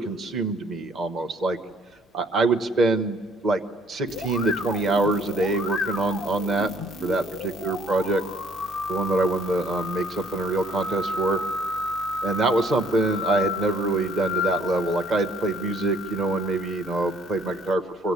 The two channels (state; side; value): normal; both; correlation 0.62